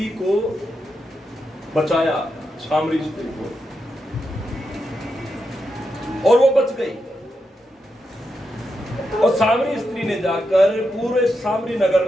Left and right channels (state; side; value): normal; both; correlation 0.85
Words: को बचाया, सामरी स्त्री को, और वो बच गई। और सामरी स्त्री ने जाकर पूरे सामरी नगर